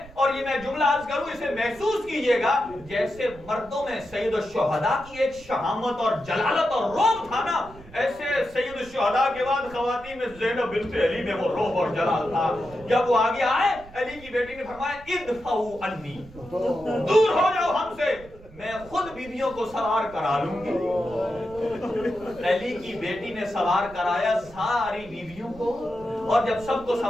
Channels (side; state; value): right; noise; rumble, 20 dB below the sound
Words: اور یہ میں جملہ عرض کروں اسے محسوس کیجئے گا جیسے مردوں میں سید الشہداء کی ایک شہامت اور جلالت اور روب تھا نا، ایسے سید الشہداء کے بعد خواتین میں زینب بنت علی میں وہ روب اور جلال تھا. جب وہ آگے آئے علی کی بیٹی نے فرمایا ادفعوا عنی، دور ہو جاؤ ہم سے، میں خود بیویوں کو سوار کرا لوں گی. علی کی بیٹی نے سوار کرایا ساری بیویوں کو، اور جب سب کو